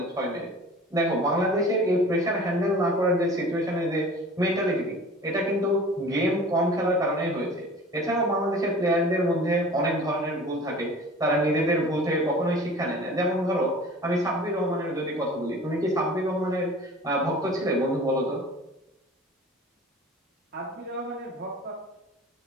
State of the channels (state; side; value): normal; both; correlation 0.42